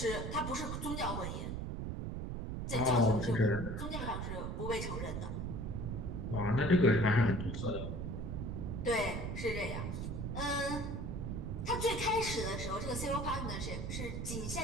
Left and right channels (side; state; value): right; noise; rumble, 3 dB below the sound